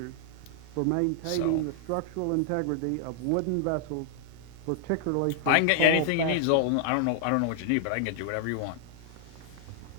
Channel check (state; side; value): different; both; correlation -0.01